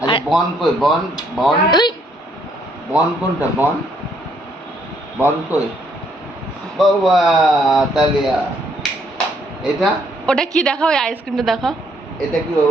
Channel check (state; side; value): normal; both; correlation 0.69